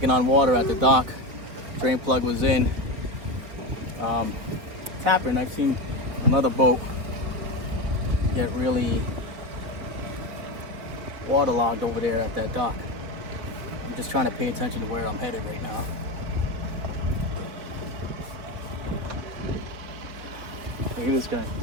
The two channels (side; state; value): left; late; 4.2 ms